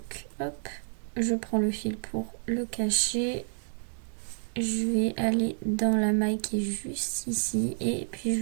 hop, je prends le fil pour le cacher. Je vais aller dans la maille qui est juste ici et puis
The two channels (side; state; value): left; silent; digital silence